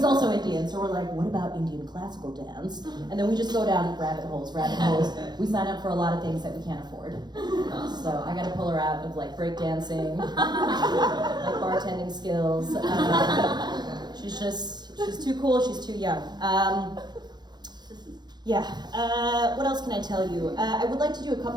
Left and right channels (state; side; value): late; left; 0.21 ms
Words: also Indian, so we're like, what about Indian classical dance? And then we just go down rabbit holes. We sign up for a lot of things that we can't afford. So I gotta pull her out of like breakdancing, like bartending skills. She's too cool, she's too young. What else can I tell you? I would like to do a